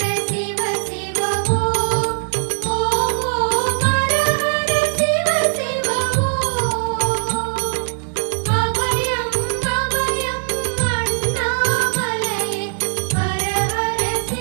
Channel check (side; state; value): left; silent; 66 dB below the other